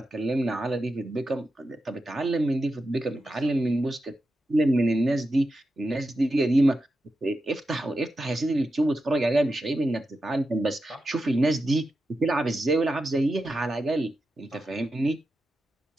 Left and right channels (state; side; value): normal; both; correlation 0.89